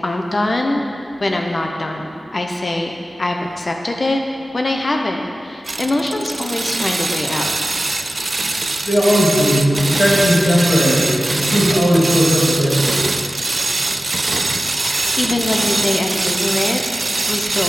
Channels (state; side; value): normal; both; correlation 0.95